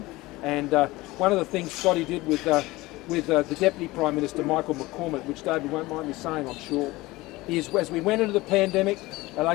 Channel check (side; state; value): right; quieter; 20.0 dB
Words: And one of the things Scotty did with the Deputy Prime Minister, Michael McCormack, which David won't mind me saying, I'm sure, is as we went into the pandemic,